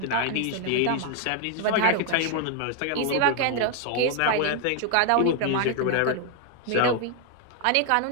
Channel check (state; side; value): different; both; correlation 0.00